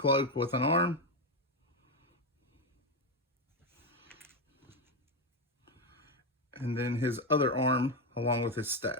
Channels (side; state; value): both; normal; correlation 0.08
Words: with an arm. And then his other arm along with his